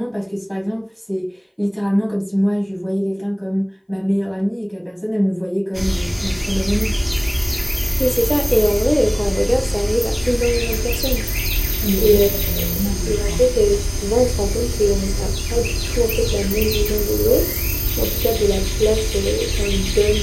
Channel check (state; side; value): identical; both; correlation 1.00